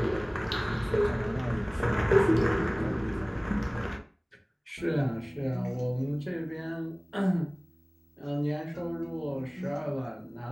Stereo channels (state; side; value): identical; both; correlation 1.00